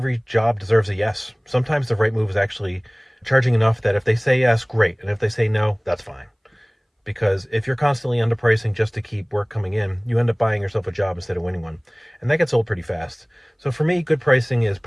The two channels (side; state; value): both; identical; correlation 1.00